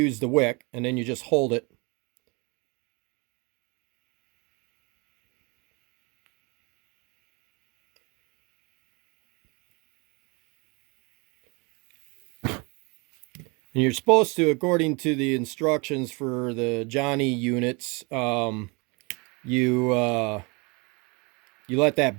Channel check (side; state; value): left; quieter; 29.2 dB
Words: the wick, and then you just hold it. And you're supposed to, according to the instructions for the Jon-E units, you let